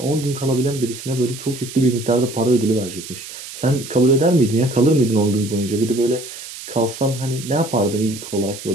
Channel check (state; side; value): noise; right; hiss, 12 dB below the sound